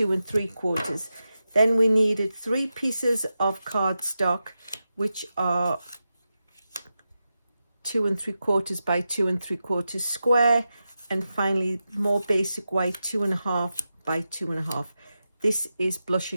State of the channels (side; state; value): both; inverted; correlation -0.91